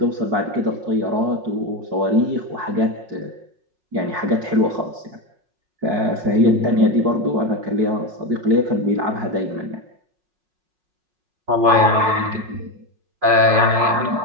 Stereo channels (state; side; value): late; left; 5.5 ms